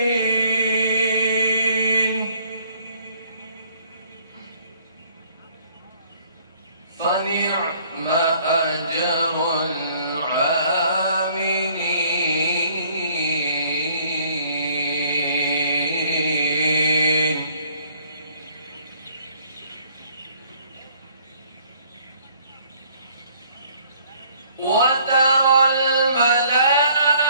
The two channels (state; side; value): inverted; both; correlation -0.61